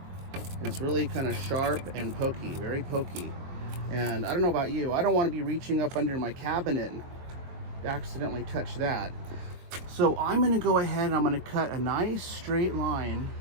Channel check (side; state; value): left; late; 23 ms